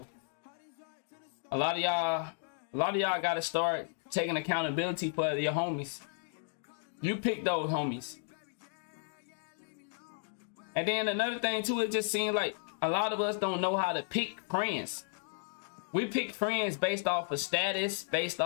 a lot of y'all gotta start taking accountability for your homies. You pick those homies. And then another thing too, it just seems like a lot of us don't know how to pick friends. We pick friends based off of status, based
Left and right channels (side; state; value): right; silent; digital silence